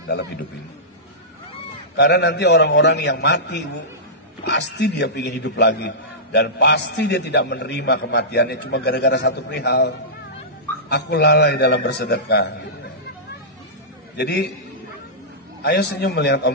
dalam hidup ini. Karena nanti orang-orang yang mati ibu, pasti dia ingin hidup lagi. Dan pasti dia tidak menerima kematiannya cuma gara-gara satu perihal. Aku lalai dalam bersedekah. Jadi ayo senyum melihat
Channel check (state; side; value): normal; both; correlation -0.17